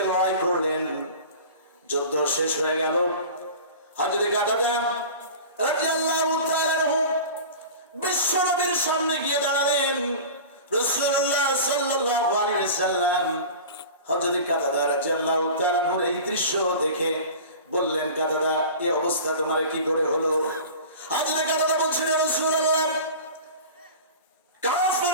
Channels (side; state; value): both; inverted; correlation -0.36